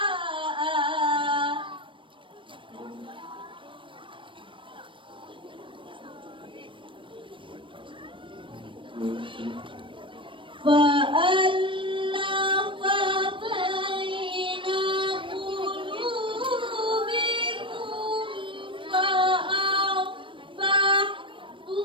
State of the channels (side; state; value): left; late; 0.25 ms